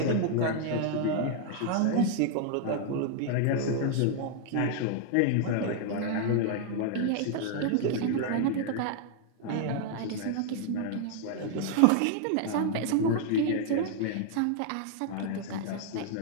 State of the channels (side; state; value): both; different; correlation 0.00